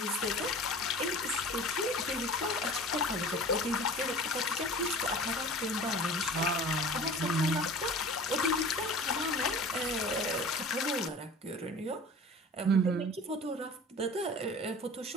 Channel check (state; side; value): normal; both; correlation 0.40